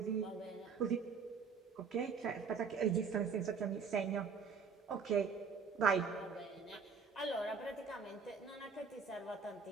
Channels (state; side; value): quieter; left; 5.6 dB